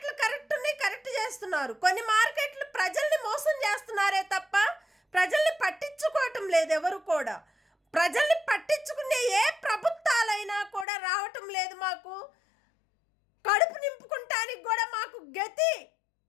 కరెక్ట్ ఉన్నాయి, కరెక్ట్ చేస్తున్నారు. కొన్ని మార్కెట్లు ప్రజల్ని మోసం చేస్తున్నారే తప్ప ప్రజల్ని పట్టించుకోవటం లేదు ఎవరు కూడా. ప్రజల్ని పట్టించుకునే ఏ ప్రభుత్వాలైనా కూడా రావటం లేదు. మాకు కడుపు నింపుకుంటానికి కూడా మాకు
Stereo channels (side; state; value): right; drops out; at 10.9 s